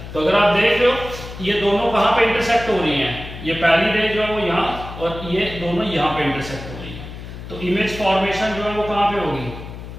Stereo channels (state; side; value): noise; left; hum, 12 dB below the sound